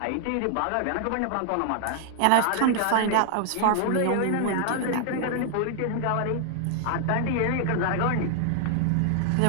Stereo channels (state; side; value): different; both; correlation 0.00